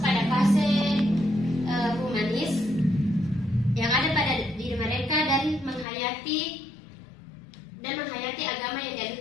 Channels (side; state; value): right; drops out; at 5.9 s